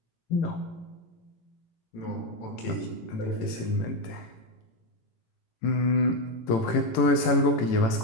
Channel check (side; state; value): right; late; 18 ms